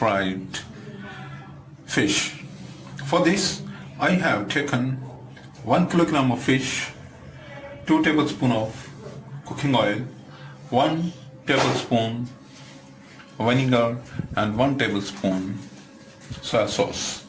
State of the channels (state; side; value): identical; both; correlation 1.00